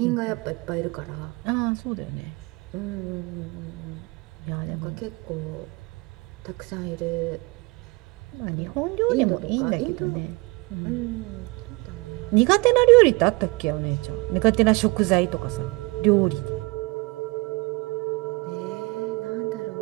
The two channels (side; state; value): left; quieter; 25.6 dB